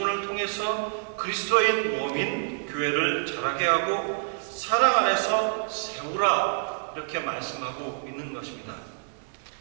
통해서 그리스도인 몸인 교회를 자라게 하고 사랑 안에서 세우라, 이렇게 말씀하고 있는 것입니다.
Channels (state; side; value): silent; left; digital silence